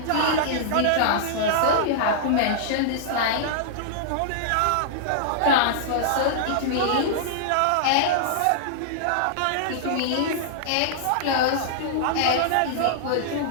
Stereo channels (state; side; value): different; both; correlation -0.02